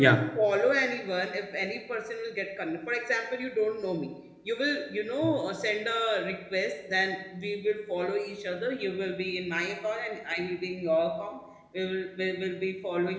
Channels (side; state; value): both; identical; correlation 1.00